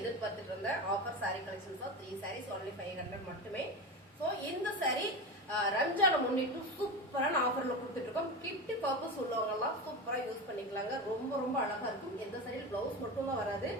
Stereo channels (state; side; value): normal; both; correlation 0.22